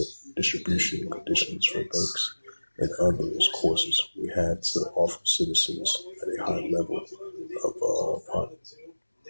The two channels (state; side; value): inverted; both; correlation -1.00